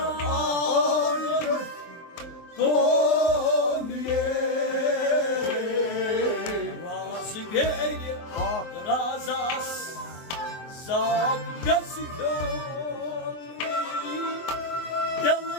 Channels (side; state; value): right; late; 24 ms